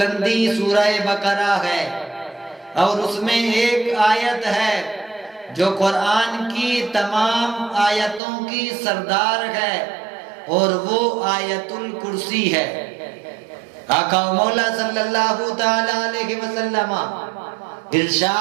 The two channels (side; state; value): left; drops out; at 8.2 s